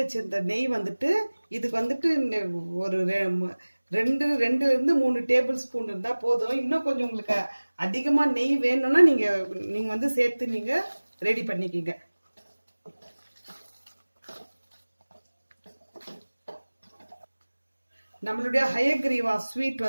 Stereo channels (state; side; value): inverted; both; correlation -1.00